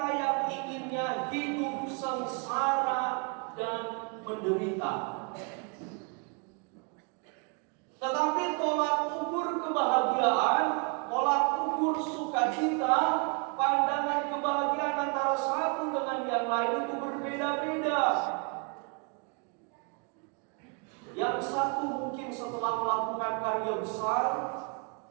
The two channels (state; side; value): quieter; left; 34.3 dB